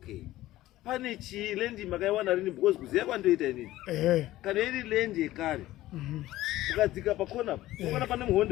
Pane lendi makaiwana rini because kuziya kwandoita inini. Kana iri lendi yekare. Mukadzika pakona, ukana pane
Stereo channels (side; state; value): right; quieter; 15.7 dB